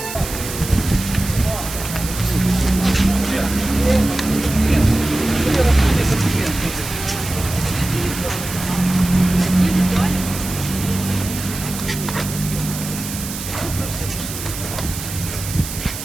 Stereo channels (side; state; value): right; noise; hiss, 8 dB below the sound